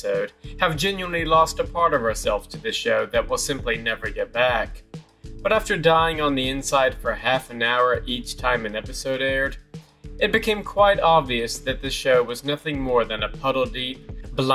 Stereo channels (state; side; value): identical; both; correlation 1.00